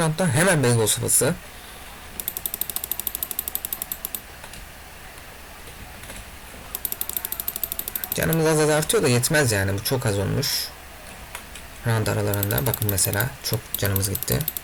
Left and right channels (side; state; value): both; identical; correlation 1.00